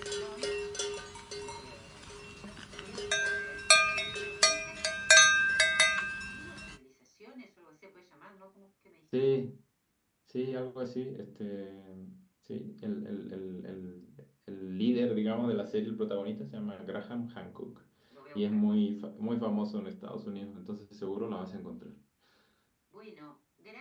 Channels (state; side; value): identical; both; correlation 1.00